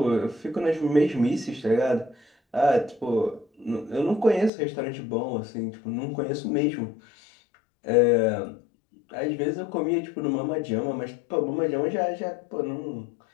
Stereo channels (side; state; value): right; drops out; at 4.5 s